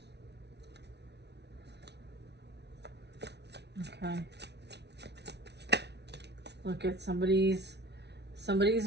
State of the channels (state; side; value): late; left; 0.50 ms